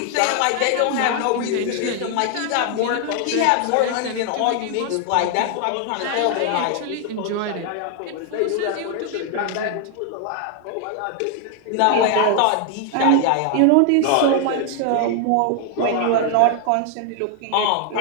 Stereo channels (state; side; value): different; both; correlation 0.00